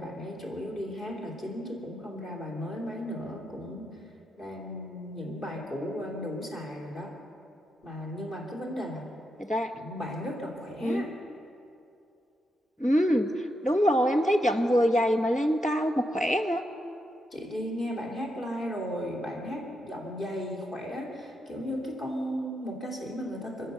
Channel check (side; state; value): both; normal; correlation 0.83